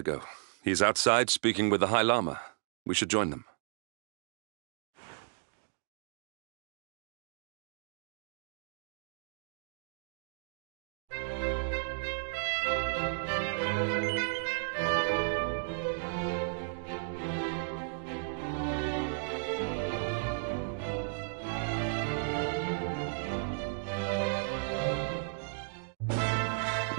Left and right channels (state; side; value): silent; left; digital silence